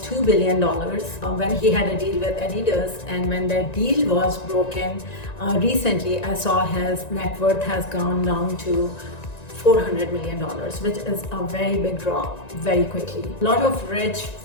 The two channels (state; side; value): late; right; 1.9 ms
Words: $2 billion when he had a deal with Adidas, and when that deal was broken recently, I saw his net worth has gone down to $400 million, which is a very big drop very quickly. A lot of rich,